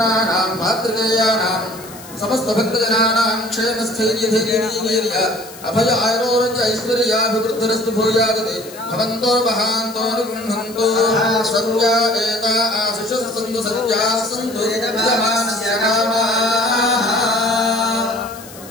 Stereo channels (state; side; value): noise; left; hiss, 18 dB below the sound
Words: मातृकेयानां समस्त भक्तजनानां क्षेमस्थैर्यधैर्यवीर्य अभय आरोग्य ऐश्वर्याभिवृद्धिरस्तु भूयादते भवन्तो महान्तो निगृह्णन्तु सत्या एता आशिषः सन्तु सत्याः सन्तु यजमानस्य कामाः.